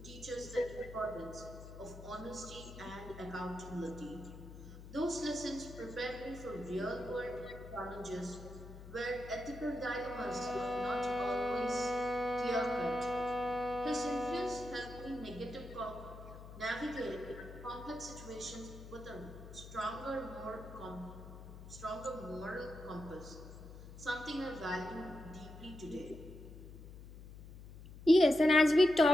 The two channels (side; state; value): left; noise; hum, 14 dB below the sound